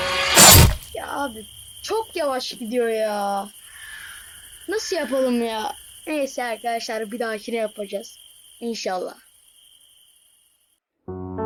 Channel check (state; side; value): identical; both; correlation 1.00